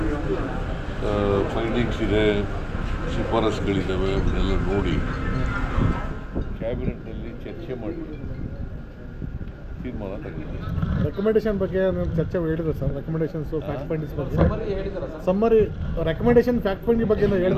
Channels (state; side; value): identical; both; correlation 1.00